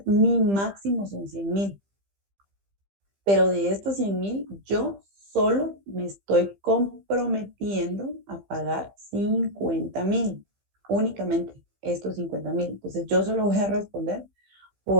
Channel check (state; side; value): late; left; 15 ms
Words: Mi máximo son 100,000, pero de estos 100,000 yo solo me estoy comprometiendo a pagar 50,000 únicamente estos 50,000. Entonces yo solo voy a responder